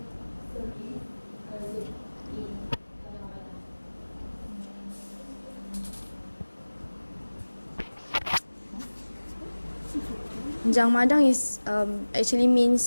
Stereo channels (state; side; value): inverted; both; correlation -1.00